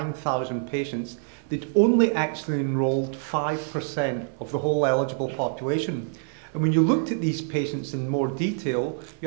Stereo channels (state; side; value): silent; left; 57 dB below the other